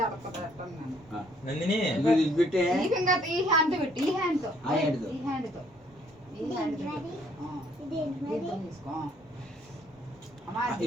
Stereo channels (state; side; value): normal; both; correlation 0.64